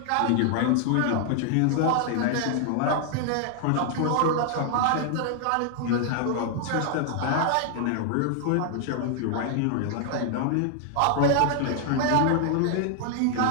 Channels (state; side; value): different; both; correlation 0.00